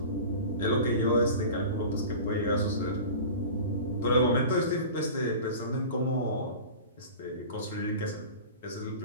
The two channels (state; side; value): inverted; both; correlation -0.35